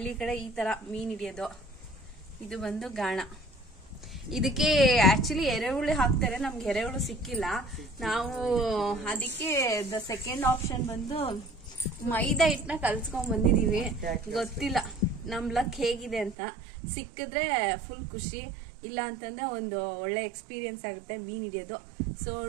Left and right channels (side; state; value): left; drops out; at 16.4 s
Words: ಕಡೆ ಈ ತರ ಮೀನ್ ಹಿಡಿಯೋದು. ಇದು ಬಂದು ಗಾಣ. ಇದಕ್ಕೆ ಆಕ್ಚುಲಿ ಎರೆಹುಳಿ ಹಾಕ್ತಾರೆ, ನಮ್ಗೆ ಎರೆಹುಳು ಸಿಕ್ಕಿಲ್ಲ. ನಾವು ಅದಕ್ಕೆ ದ ಸೆಕೆಂಡ್ ಆಪ್ಷನ್ ಬಂದು ಮೈದಾ ಹಿಟ್ಟನ್ನ ಕಲ್ಸ್ಕೊಂಡ್ ಬಂದಿದೀವಿ. ಗೊತ್ತಿಲ್ಲ ನಮ್ ಲಕ್ ಹೇಗಿದೆ ಅಂತ. ಸಿಕ್ಕಿದ್ರೆ ಫುಲ್ ಖುಷಿ, ಇಲ್ಲ ಅಂತಂದ್ರೆ ಒಂದು ಒಳ್ಳೆ ಎಕ್ಸ್ಪೀರಿಯನ್ಸ್ ಆಗುತ್ತೆ ಮೀನ್ ಹಿಡಿಯೋದು. ಸೊ